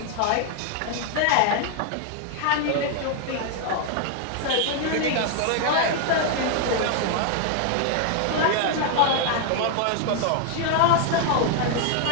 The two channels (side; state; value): both; different; correlation 0.00